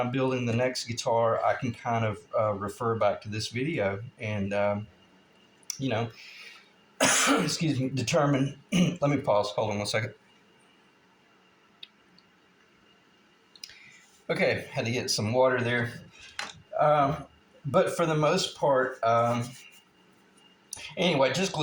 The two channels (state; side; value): identical; both; correlation 1.00